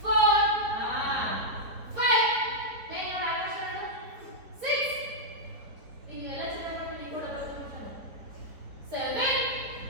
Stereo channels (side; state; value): left; late; 4.4 ms